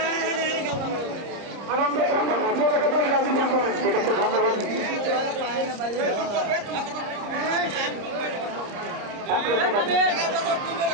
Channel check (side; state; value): left; late; 30 ms